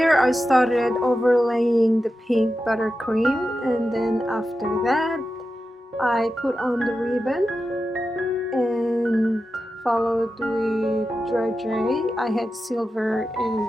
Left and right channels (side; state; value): both; normal; correlation 0.91